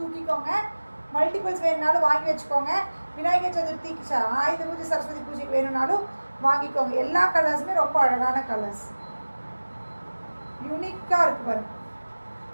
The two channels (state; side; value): inverted; both; correlation -1.00